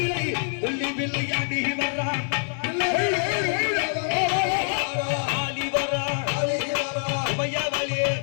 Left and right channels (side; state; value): right; silent; digital silence